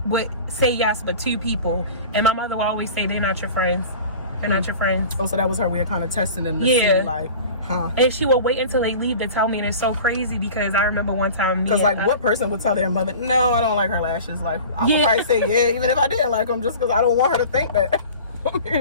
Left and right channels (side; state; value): both; inverted; correlation -0.39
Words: would say yes, but 2 people, and my mother would always say, they're not your friends. They're not your friends. Oh, so that was her way of kind of testing them to see, like, huh? And she would wait until they leave to tell me, and it's so crazy because I remember one time, because like, what person would tell their mother, no, I don't like her lashes? Like, I would probably say yeah, even if I didn't like them, just because I don't want her to think that.